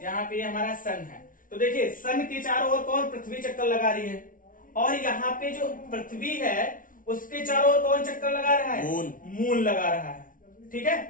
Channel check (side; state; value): right; late; 0.39 ms